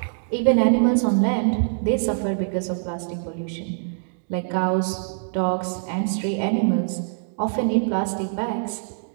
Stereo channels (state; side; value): silent; left; digital silence